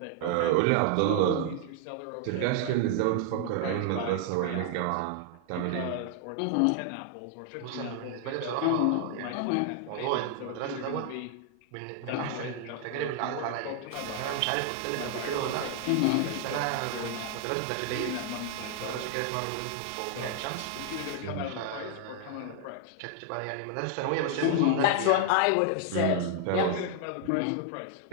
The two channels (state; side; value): different; both; correlation 0.00